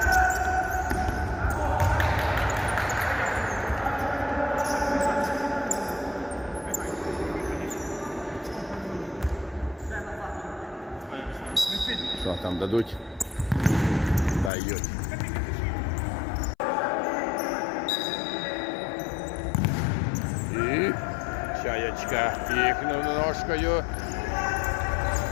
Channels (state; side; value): drops out; right; at 14.5 s